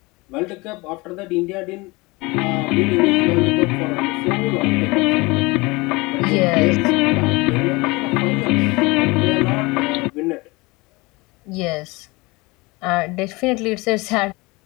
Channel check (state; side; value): quieter; right; 24.0 dB